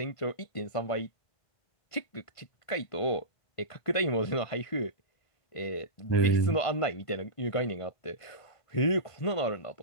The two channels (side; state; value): right; late; 1.5 ms